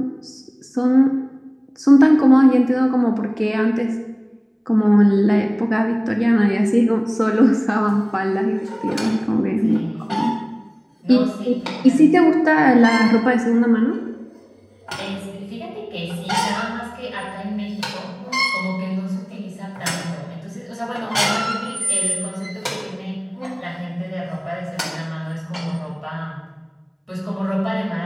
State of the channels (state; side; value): identical; both; correlation 1.00